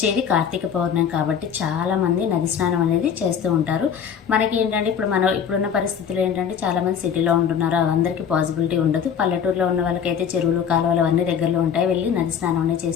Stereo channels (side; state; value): right; quieter; 7.7 dB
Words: కార్తీక పౌర్ణమి కాబట్టి చాలామంది నది స్నానం అనేది చేస్తూ ఉంటారు. మనకి ఏంటంటే ఇప్పుడున్న పరిస్థితులు ఏంటంటే చాలామంది సిటీలో ఉంటున్నారు, అందరికీ పాసిబిలిటీ ఉండదు. పల్లెటూరులో ఉన్న వాళ్ళకైతే చెరువులు కాలువలు అవన్నీ దగ్గరలో ఉంటాయి, వెళ్ళి నది స్నానం అనేది